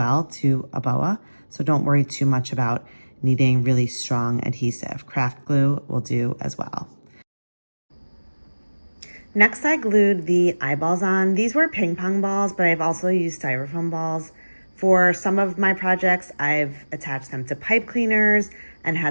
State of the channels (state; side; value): inverted; both; correlation -1.00